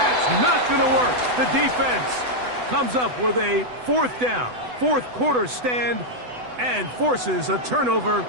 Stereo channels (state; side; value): late; left; 8.0 ms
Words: not going to work. The defense comes up with a fourth down, fourth quarter stand, and forces a turnover